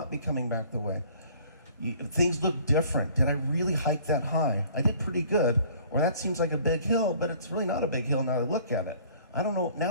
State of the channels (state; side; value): inverted; both; correlation -0.54